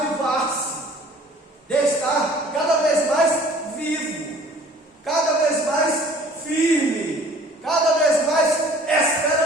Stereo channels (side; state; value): both; normal; correlation 0.51